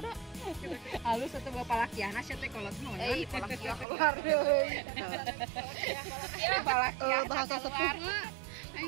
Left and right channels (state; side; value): drops out; left; at 3.9 s